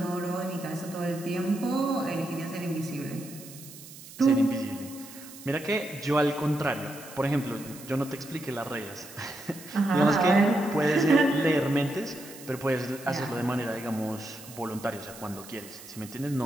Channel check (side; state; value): right; noise; hiss, 16 dB below the sound